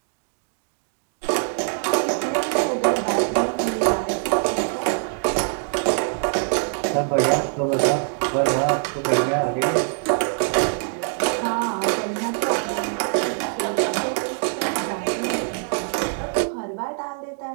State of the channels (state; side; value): silent; left; digital silence